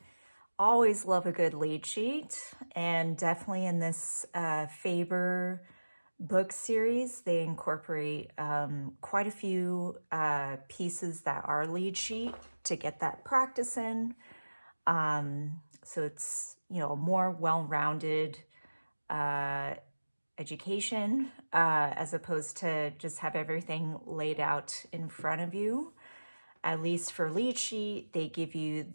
Always love a good lead sheet, and definitely in this Faber book series, they incorporate quite a few pieces that are lead sheet to get that practice in. So it's, a more well-rounded education as opposed to just have everything laid out in front of you. At least for lead sheet, they give you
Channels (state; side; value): inverted; both; correlation -1.00